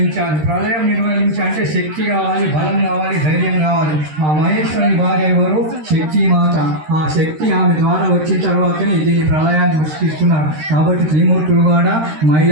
ప్రళయం నిర్వహించాలంటే శక్తి కావాలి, బలం కావాలి, ధైర్యం కావాలి. ఆ మహేశ్వరుని భార్య ఎవరు? శక్తి మాత. ఆ శక్తి ఆమె ద్వారా వచ్చిన తర్వాతనే దీన్ని ప్రళయాన్ని సృష్టిస్తున్నారు. కాబట్టి త్రిమూర్తులు కూడా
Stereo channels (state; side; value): late; left; 13 ms